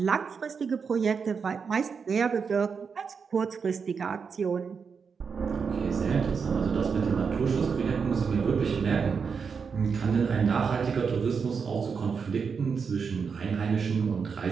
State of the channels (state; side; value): quieter; left; 5.8 dB